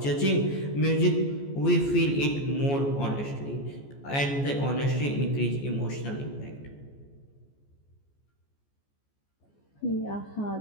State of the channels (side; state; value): right; late; 14 ms